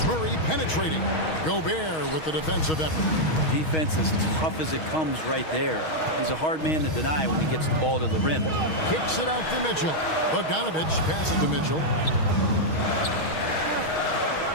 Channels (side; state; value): right; late; 6.3 ms